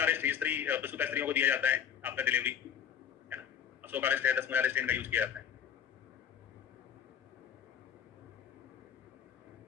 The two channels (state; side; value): quieter; right; 8.5 dB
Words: रिष्ट स्त्री प्रसूता स्त्रियों को दिया जाता है आफ्टर डिलीवरी, है ना, अशोक रिष्ट है, 10 मूला रिष्ट इनका यूज किया जाता है।